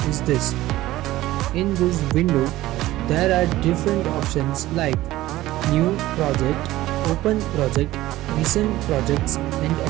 is this. In this window, there are different options like New Project, Open Project, Recent Projects and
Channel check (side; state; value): left; quieter; 16.3 dB